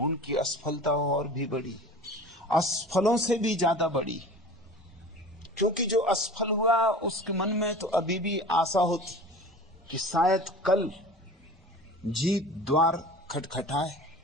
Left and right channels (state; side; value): normal; both; correlation 0.38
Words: असफलता और भी बड़ी, असफलों से भी ज्यादा बड़ी। क्योंकि जो असफल हुआ उसके मन में तो अभी भी आशा होती कि शायद कल जीत द्वार खटखटाए।